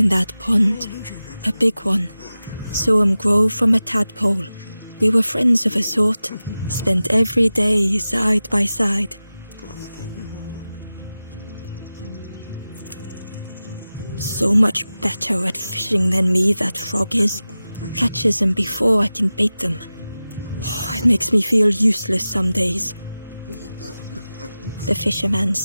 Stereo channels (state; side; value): inverted; both; correlation -0.95